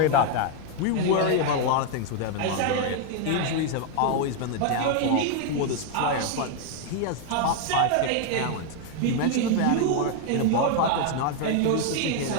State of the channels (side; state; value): both; different; correlation 0.00